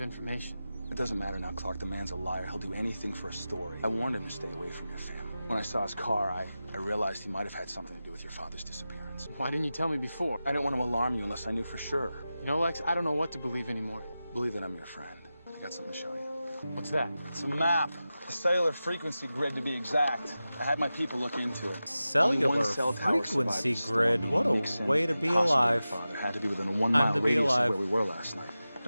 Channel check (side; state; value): both; inverted; correlation -0.94